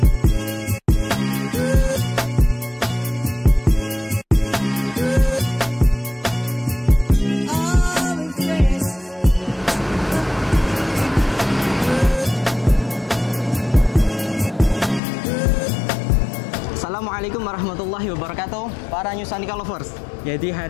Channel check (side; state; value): right; drops out; at 15.0 s